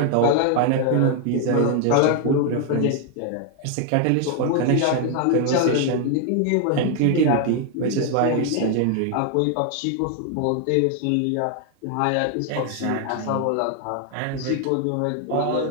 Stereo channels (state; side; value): different; both; correlation 0.00